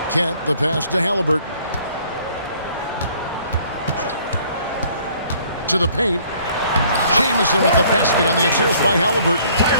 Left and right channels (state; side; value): inverted; both; correlation -0.59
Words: Kent, the pass to Halliburton. To the paint. Jamison with the basket on the assist by Halliburton.